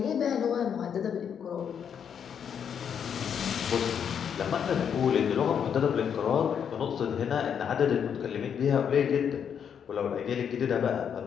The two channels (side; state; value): right; quieter; 7.9 dB